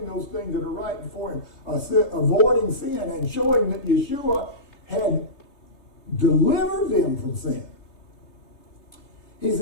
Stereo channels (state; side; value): late; right; 3.3 ms